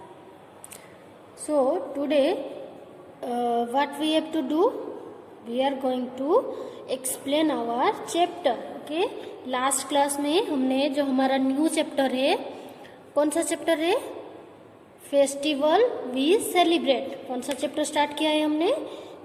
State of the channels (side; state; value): both; identical; correlation 1.00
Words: So today what we have to do, we are going to explain our chapter. Okay, last class में हमने जो हमारा new chapter है, कौन सा chapter है? Festival we celebrate. कौन सा चैप्टर स्टार्ट किया है हमने?